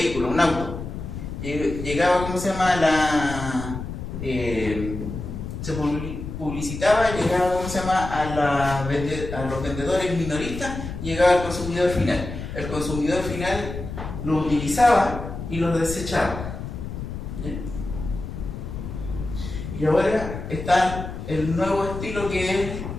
un auto, llegaba, se publicitaba, llegaba, a los vendedores minoristas, llegaba al consumidor final. El consumidor final lo utilizaba y lo desechaba. ¿Ya? Y ahora está el nuevo estilo, que es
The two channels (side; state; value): left; noise; rumble, 8 dB below the sound